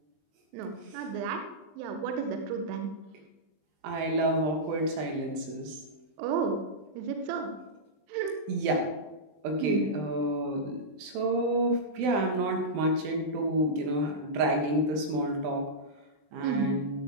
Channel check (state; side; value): late; left; 20 ms